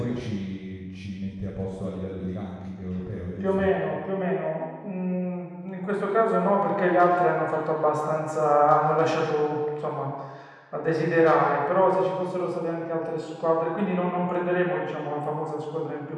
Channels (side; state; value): both; identical; correlation 1.00